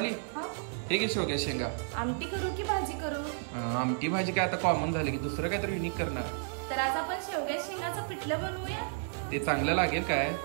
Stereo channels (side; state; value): left; silent; digital silence